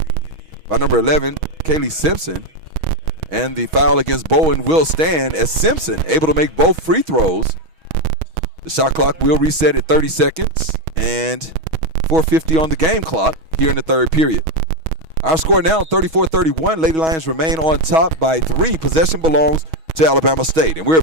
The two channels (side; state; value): left; late; 6.2 ms